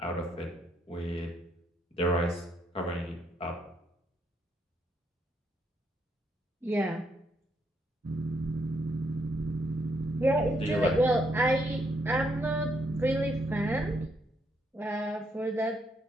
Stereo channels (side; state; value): both; normal; correlation 0.75